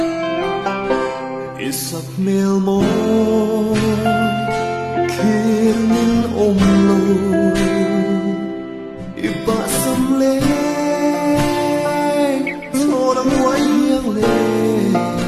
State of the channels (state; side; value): identical; both; correlation 1.00